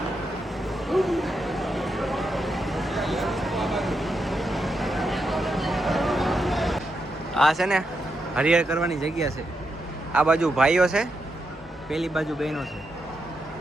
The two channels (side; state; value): both; normal; correlation 0.84